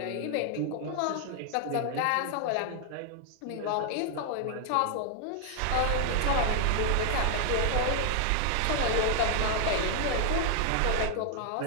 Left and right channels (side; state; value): both; different; correlation 0.00